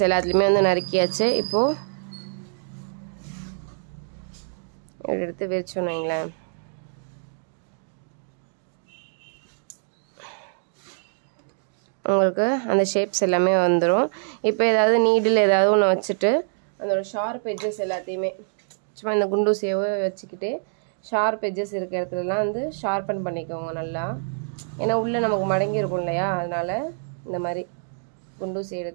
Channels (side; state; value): left; silent; digital silence